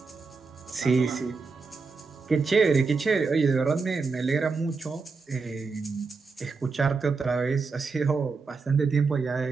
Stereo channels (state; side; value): quieter; left; 4.6 dB